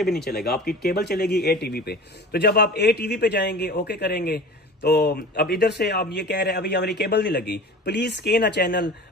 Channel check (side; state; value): both; normal; correlation 0.38